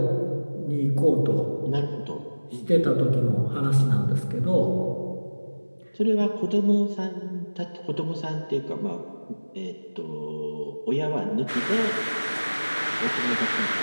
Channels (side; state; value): both; inverted; correlation -1.00